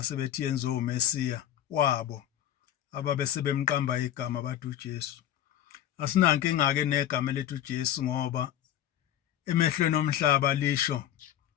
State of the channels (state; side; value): quieter; right; 11.4 dB